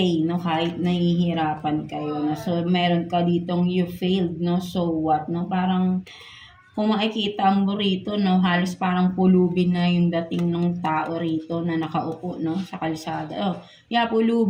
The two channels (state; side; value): identical; both; correlation 1.00